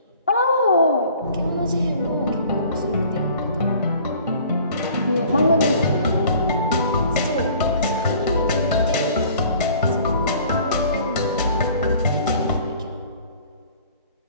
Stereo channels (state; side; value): inverted; both; correlation -0.51